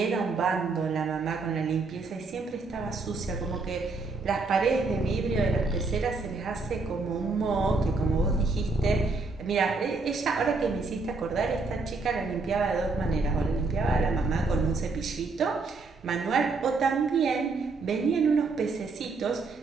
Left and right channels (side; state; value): left; quieter; 3.8 dB